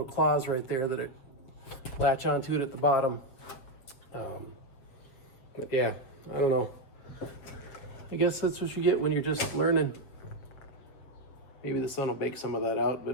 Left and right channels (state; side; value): late; right; 7.8 ms